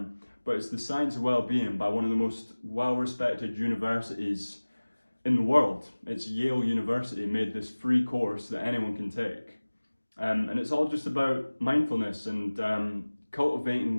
it's The Science of Wellbeing by one of the most well-respected universities in the world. It's Yale University made this free course that anyone can take. And it's all just about mindfulness and cultivating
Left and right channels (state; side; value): inverted; both; correlation -1.00